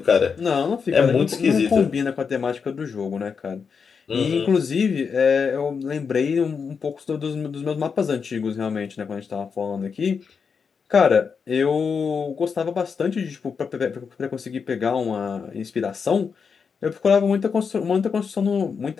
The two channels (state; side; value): quieter; right; 5.9 dB